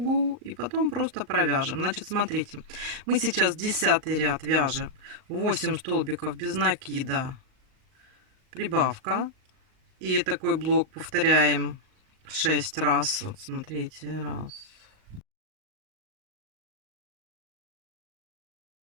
и потом просто провяжем. Значит, смотрите, мы сейчас 10 ряд вяжем 8 столбиков без накида прибавка, и такой блок повторяем 6 раз. Вот смотрите, раз,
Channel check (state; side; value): late; left; 38 ms